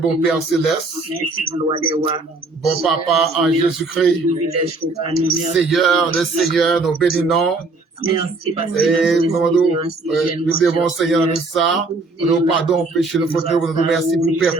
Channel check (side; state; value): left; quieter; 3.4 dB